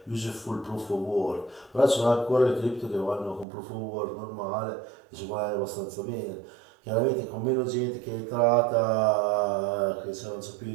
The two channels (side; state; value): left; drops out; at 3.5 s